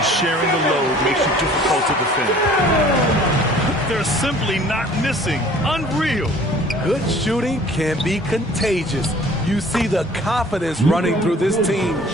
sharing the load makes it difficult to defend. They're simply not missing. Unreal. Good shooting can be contagious. You see the confidence running through this team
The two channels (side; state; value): both; normal; correlation 0.51